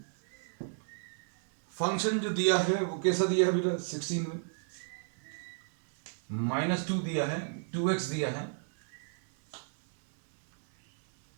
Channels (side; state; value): left; silent; 56 dB below the other